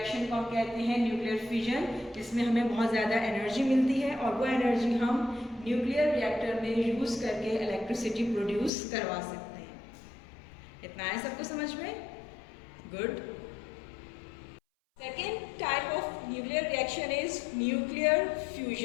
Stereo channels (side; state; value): right; drops out; at 8.7 s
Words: को हम कहते हैं न्यूक्लियर फिजन, जिसमें हमें बहुत ज़्यादा एनर्जी मिलती है और वो एनर्जी हम न्यूक्लियर रिएक्टर में यूज़ करके इलेक्ट्रिसिटी प्रोड्यूस करवा सकते हैं। इतना है सबको समझ में? Good. Second type of nuclear reaction is nuclear